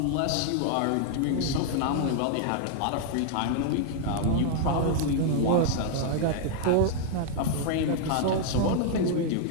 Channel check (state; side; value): different; both; correlation 0.00